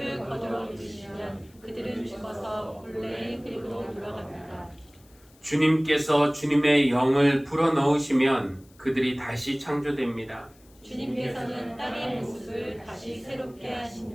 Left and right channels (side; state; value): left; noise; hiss, 29 dB below the sound